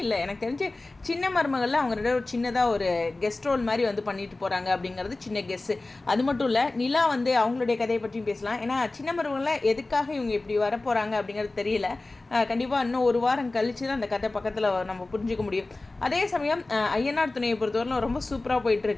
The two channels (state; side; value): quieter; right; 3.1 dB